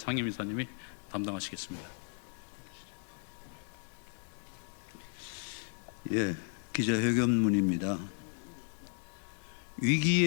담당하시겠습니다. 예, 기자회견문입니다.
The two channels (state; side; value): silent; right; 54 dB below the other